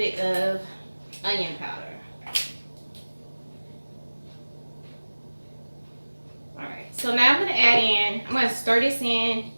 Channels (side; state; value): both; inverted; correlation -1.00